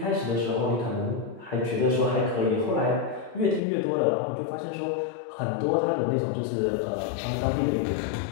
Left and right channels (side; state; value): right; drops out; at 3.6 s